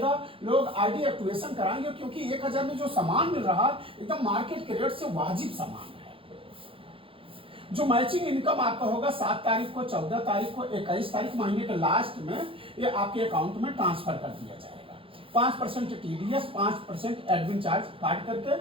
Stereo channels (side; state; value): left; late; 0.26 ms